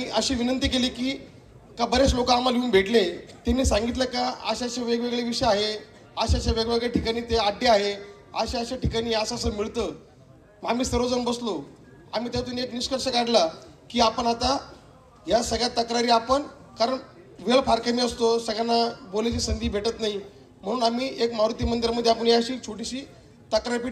अशी विनंती केली की बरेच लोक आम्हाला येऊन भेटले, त्यांनी सांगितलं का असे वेगवेगळे विषय आहे, अशा वेगवेगळ्या ठिकाणी ते अड्डे आहे, अशा ठिकाणी असं मिळतं. आम्ही सर्वजण बसलो, आम्ही त्यातून एक निष्कर्ष काढला की आपण आता या सगळ्या तक्रारी आपण, कारण वेळ फार कमी असतो, सगळ्यांना बोलायची संधी भेटत नाही, म्हणून आम्ही एक मारुती मंदिरामध्ये आपण अशी छोटीशी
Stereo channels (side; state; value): both; identical; correlation 1.00